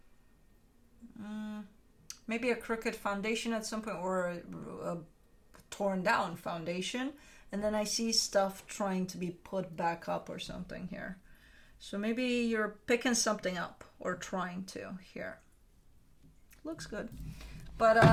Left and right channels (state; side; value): identical; both; correlation 1.00